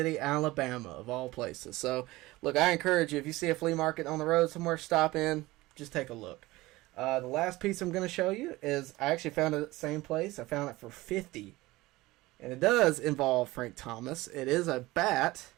Alabama, of all places. So, look, I encourage you, if you see a flea market on the road somewhere, stop in, just take a look. The last piece I'm going to show you is, I actually found it at the same place. I found it for $50. And it does involve Frank Thomas. It is a bat,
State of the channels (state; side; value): quieter; left; 19.5 dB